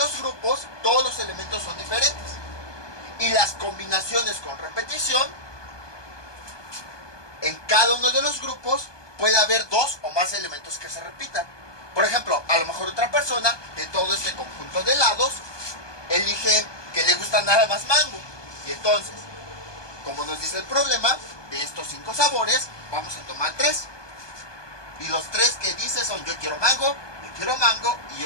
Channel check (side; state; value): right; late; 1.2 ms